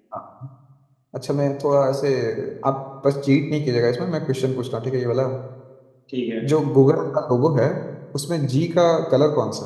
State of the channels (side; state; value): both; identical; correlation 1.00